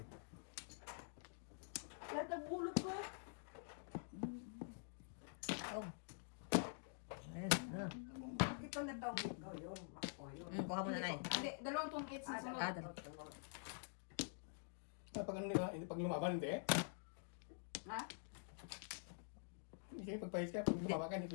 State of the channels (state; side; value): silent; right; digital silence